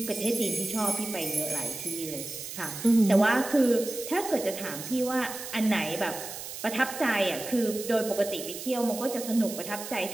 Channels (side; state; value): right; noise; hiss, 9 dB below the sound